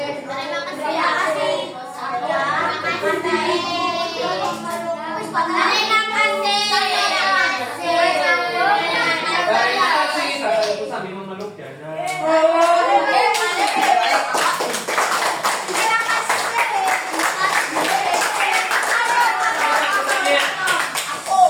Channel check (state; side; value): identical; both; correlation 1.00